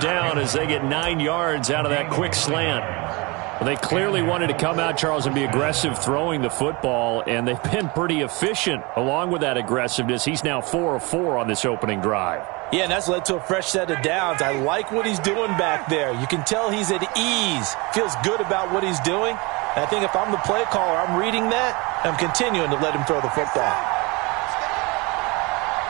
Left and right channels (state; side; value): quieter; left; 26.5 dB